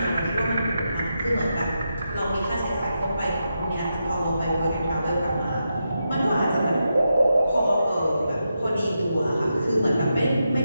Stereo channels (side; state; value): both; inverted; correlation -0.86